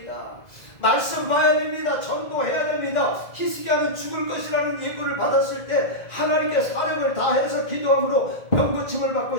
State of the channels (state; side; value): late; right; 2.0 ms